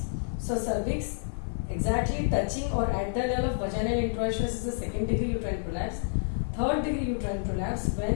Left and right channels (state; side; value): silent; right; 59 dB below the other